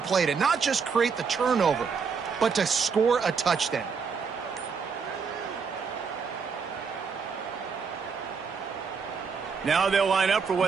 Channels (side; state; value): left; quieter; 5.7 dB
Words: to not just create the turnover, but to score a touchdown. Now they'll line up for